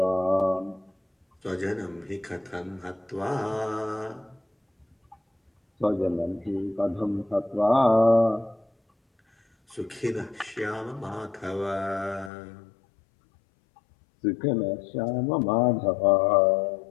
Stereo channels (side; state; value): right; drops out; at 12.3 s